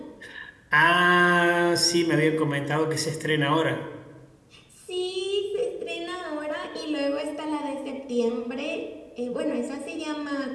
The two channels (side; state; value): both; identical; correlation 1.00